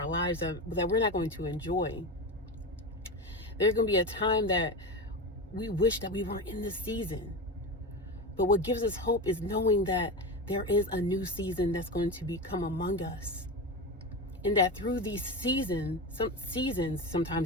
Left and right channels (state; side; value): normal; both; correlation 0.21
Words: lives that we're not going to enjoy. There's going to be a time that we wish that we weren't in this season. But what gives us hope is knowing that there is a new season that's going to become among us. And that through these seasons,